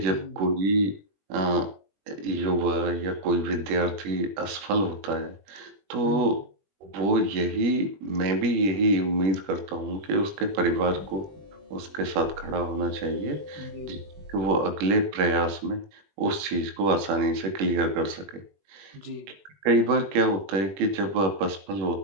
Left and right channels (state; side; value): late; left; 20 ms